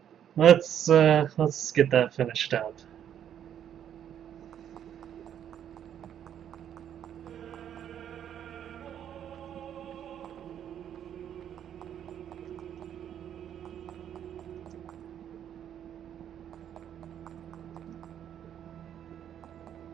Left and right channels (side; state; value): left; quieter; 9.7 dB